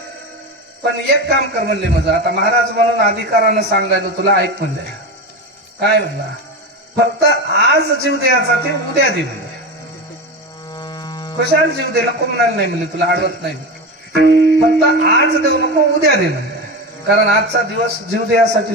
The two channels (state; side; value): normal; both; correlation 0.21